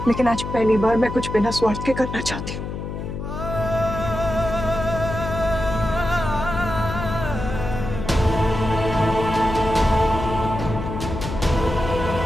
लेकिन आज पहली बार मैं कुछ बिना स्वार्थ के करना चाहती हूँ।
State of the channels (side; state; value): left; noise; hum, 6 dB below the sound